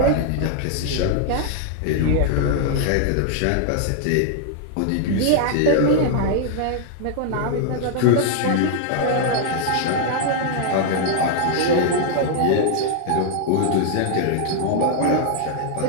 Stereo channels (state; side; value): different; both; correlation 0.00